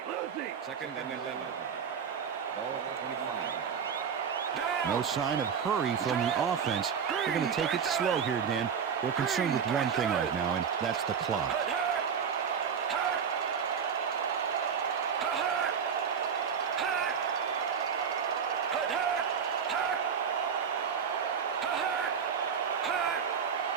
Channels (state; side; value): quieter; left; 7.0 dB